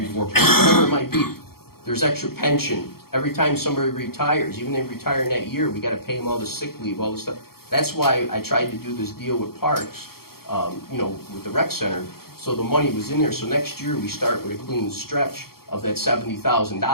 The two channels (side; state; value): right; late; 0.94 ms